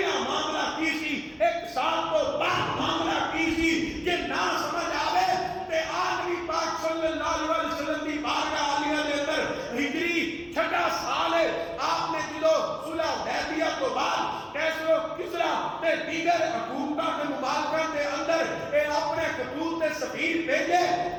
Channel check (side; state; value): both; identical; correlation 1.00